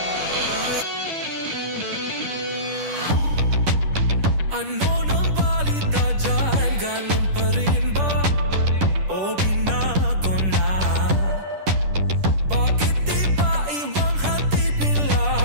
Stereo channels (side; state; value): left; late; 10 ms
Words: Ano nang balita dyan? Ganun pa rin ba? O binago na? Bakit di ba ibang hatid nila?